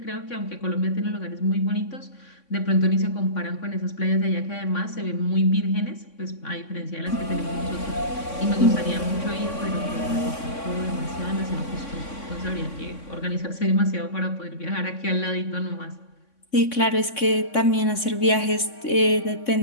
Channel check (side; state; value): right; late; 3.6 ms